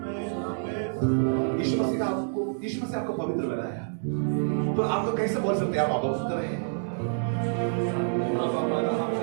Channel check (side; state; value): left; silent; digital silence